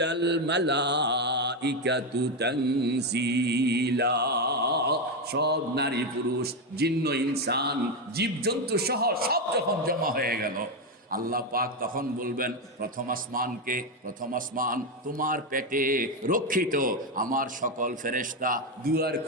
মালাইকাতু তানজিলা। সব নারী পুরুষ, জিন্ন ইনসান, জীবজন্তু সহ সব যখন জমা হয়ে গেল, আল্লাহ পাক তখন বলবেন প্রথম আসমানকে, প্রথম আসমান তোমার পেটে রক্ষিত আমার সকল ফেরেশতা, দুয়ার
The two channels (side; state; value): both; normal; correlation 0.09